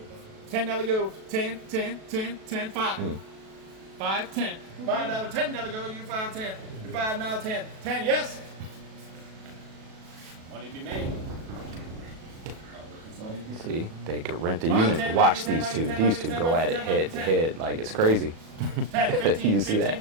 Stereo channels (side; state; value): left; late; 37 ms